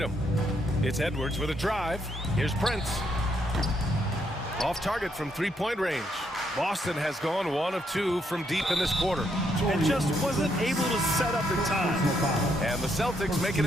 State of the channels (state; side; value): normal; both; correlation 0.76